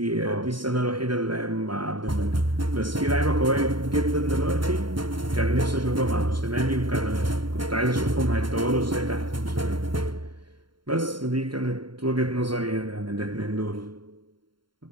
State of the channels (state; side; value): late; left; 0.72 ms